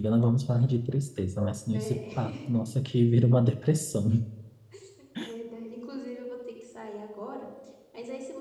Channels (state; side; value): identical; both; correlation 1.00